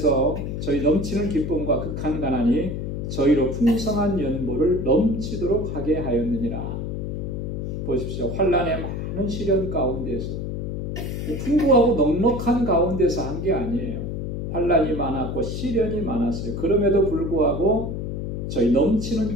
저희 넘치는 기쁨과 극한 가난이 저희로 풍성한 연보를 넘치도록 하게 하였느니라. 보십시오. 환난의 많은 시련 가운데서 풍부하고 넉넉한 가운데서 한 게 아니에요. 환난이 많았고 시련이 많았어요. 그럼에도 불구하고 저희 넘치는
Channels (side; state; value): left; noise; hum, 4 dB below the sound